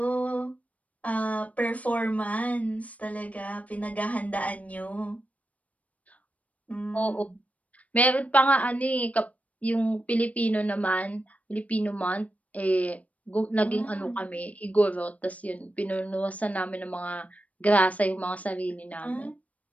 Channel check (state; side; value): late; right; 0.069 ms